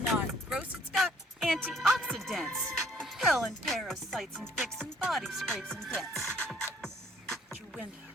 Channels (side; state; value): both; normal; correlation 0.61